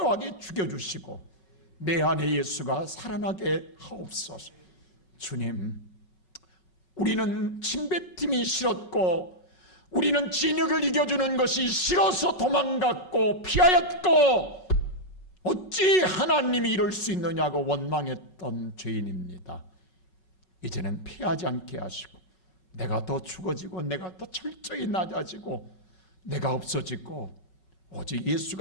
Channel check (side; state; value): right; late; 5.5 ms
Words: 죽여주시고 내 안에 예수가 살아나게 하옵소서. 주님, 우리는 침뱉음이 싫었고 우리는 진흙을 이겨주는 것이 싫어서 도망갔고 피하였고 어찌 하나님이 이럴 수 있느냐고 원망했던 죄인입니다. 이제는 피하지 않게 하시고 내가 더 죽어지고 내가 더 철저히 낮아지고 내가 없어지고 오직